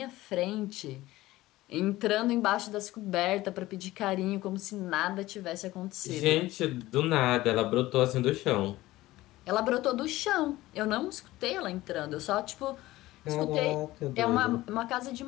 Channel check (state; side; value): quieter; right; 17.3 dB